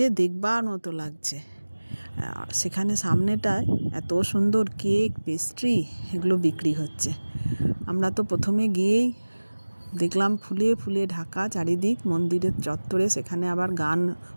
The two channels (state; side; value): inverted; both; correlation -1.00